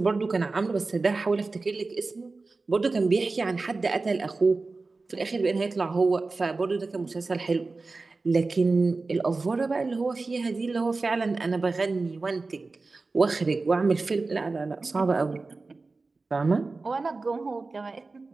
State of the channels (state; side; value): quieter; left; 3.7 dB